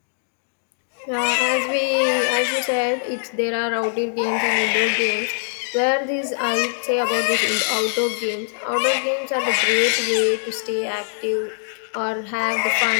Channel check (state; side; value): silent; right; digital silence